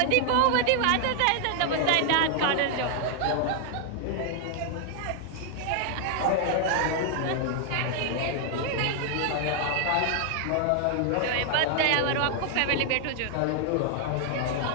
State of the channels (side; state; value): both; different; correlation 0.00